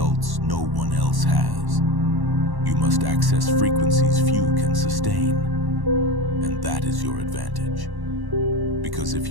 no one else has, you must access frequencies few can sustain, and that is your advantage. Because if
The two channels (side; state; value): left; late; 1.1 ms